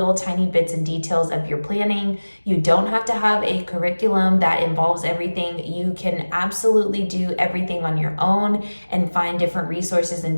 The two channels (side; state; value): both; inverted; correlation -1.00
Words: tiny bits and details of your planning. You don't have to have a curriculum that involves everything. You can absolutely do everything on your own and find different resources and